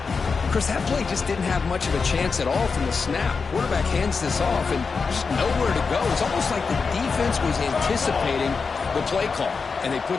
Chris, that play just didn't have much of a chance at all from the snap. Quarterback hands this off and just nowhere to go. It's almost like the defense was anticipating the play call, and they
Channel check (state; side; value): quieter; right; 5.0 dB